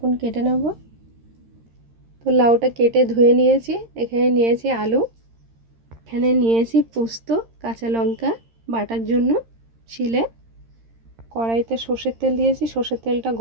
কেটে নেব। তো লাউটা কেটে ধুয়ে নিয়েছি। এখানে নিয়েছি আলু, এখানে নিয়েছি পোস্ত, কাঁচা লঙ্কা বাটার জন্য শিলে। কড়াইতে সর্ষের তেল দিয়েছি, সর্ষের তেলটা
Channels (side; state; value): left; late; 13 ms